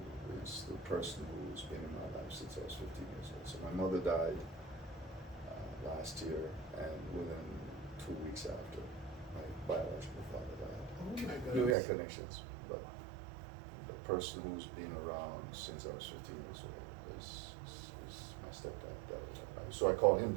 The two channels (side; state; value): left; drops out; at 11.8 s